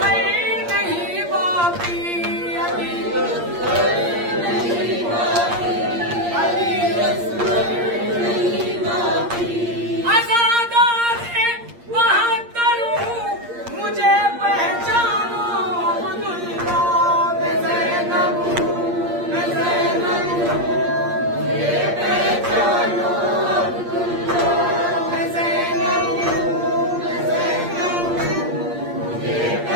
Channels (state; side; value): late; left; 8.6 ms